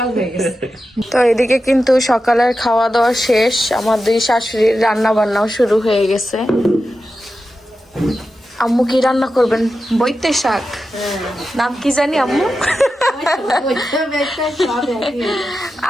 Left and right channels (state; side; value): normal; both; correlation 0.91